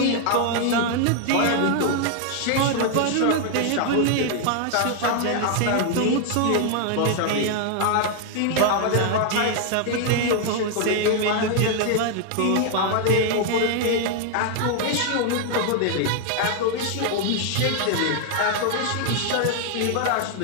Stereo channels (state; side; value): different; both; correlation 0.00